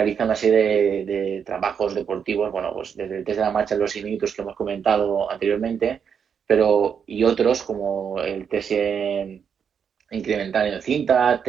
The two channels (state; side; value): quieter; left; 7.2 dB